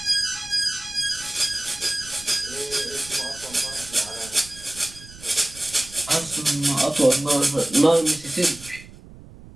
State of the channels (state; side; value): noise; right; rumble, 19 dB below the sound